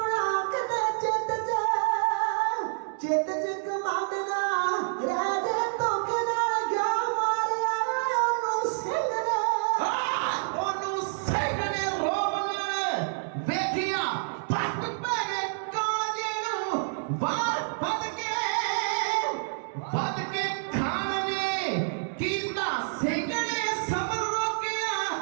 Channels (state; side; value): silent; left; digital silence